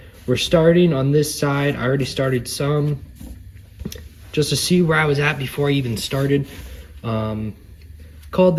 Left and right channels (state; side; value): identical; both; correlation 1.00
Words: We're starting on this side. I already started some, just to see where I was at before I even started. Called